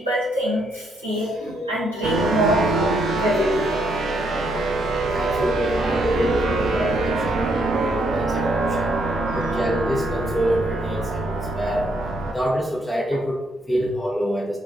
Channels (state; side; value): normal; both; correlation 0.74